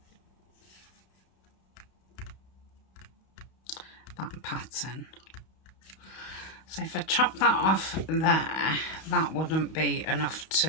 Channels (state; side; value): late; right; 32 ms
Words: That pattern. So if I chop that off there, that wouldn't be enough